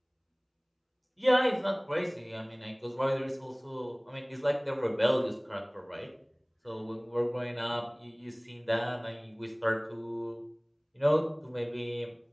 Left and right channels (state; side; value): identical; both; correlation 1.00